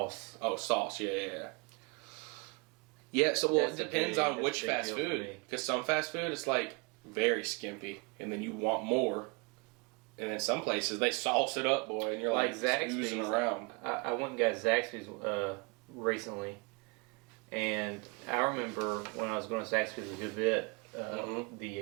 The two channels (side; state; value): left; quieter; 30.8 dB